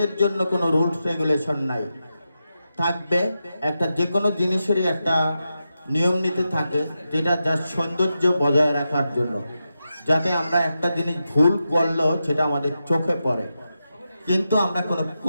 জন্য কোনো রুলস রেগুলেশন নাই, থাকবে একটা যে কোনো জিনিসেরই একটা নিয়ম নীতি থাকে, যেটা যার সৌন্দর্য বজায় রাখার জন্য, যাতে আমরা একটা জিনিস ভুল করলেও সেটা আমাদের চোখে পড়ে। কিন্তু আমরা কোনো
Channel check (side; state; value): both; inverted; correlation -0.89